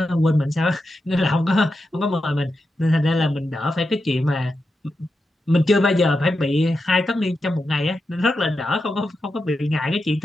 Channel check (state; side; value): normal; both; correlation 0.88